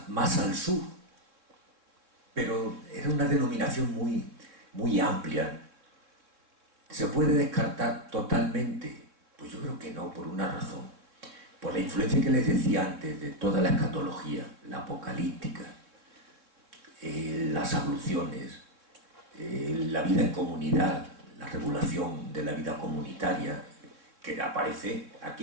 más al sur, pero era una denominación muy amplia. ¿Se puede descartar totalmente? Pues yo creo que no, por una razón. Por la influencia que les decía antes de toda la escatología, la apocalíptica, las abluciones, la vida en comunidad, la regulación de la vida comunitaria, que aparece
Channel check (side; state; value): left; late; 3.6 ms